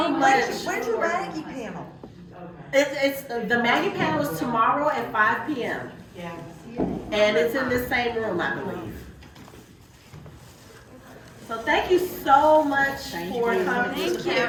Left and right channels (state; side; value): identical; both; correlation 1.00